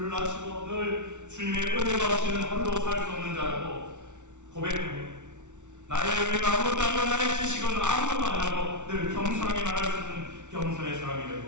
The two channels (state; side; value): late; left; 0.84 ms